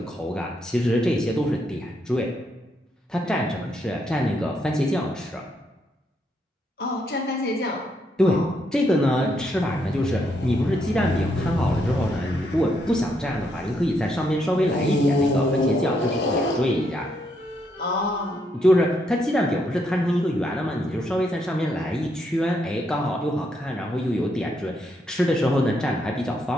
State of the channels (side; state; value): both; normal; correlation 0.77